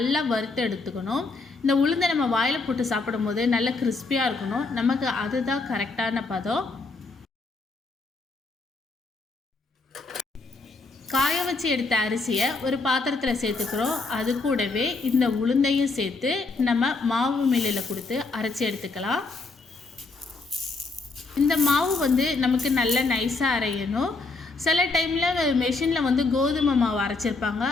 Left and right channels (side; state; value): right; quieter; 3.7 dB